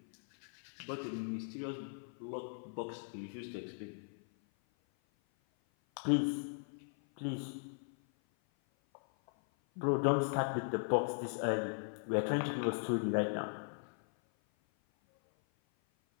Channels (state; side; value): silent; right; 52 dB below the other